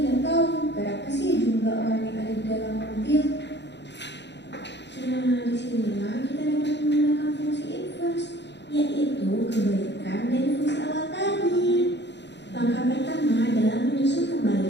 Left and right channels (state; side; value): late; right; 0.51 ms